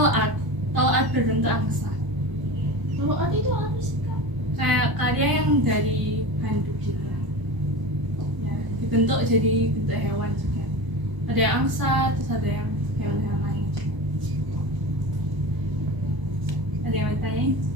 berbentuk angsa. Kalau ada itu apa sih kak? Kayak karya yang dari handuk gitu. Ya, dibentuk jadi bentuk hewan juga. Ada yang angsa, terus ada yang hewan-hewan lain juga. Ada yang mau ditanyain?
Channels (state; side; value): late; left; 1.1 ms